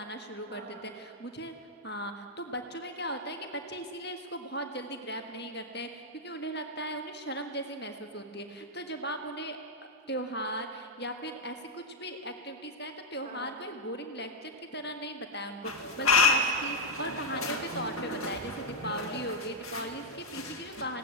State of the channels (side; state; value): both; normal; correlation -0.02